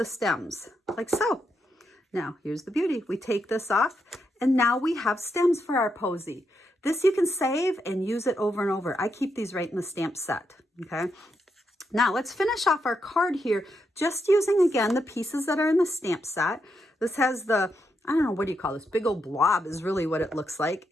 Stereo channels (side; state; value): both; normal; correlation 0.82